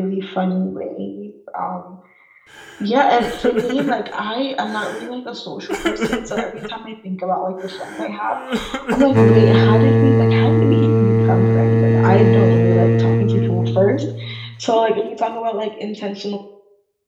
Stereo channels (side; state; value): both; identical; correlation 1.00